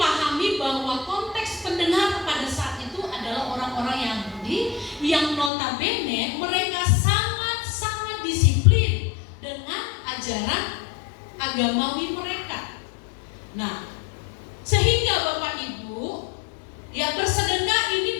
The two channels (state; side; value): drops out; right; at 5.5 s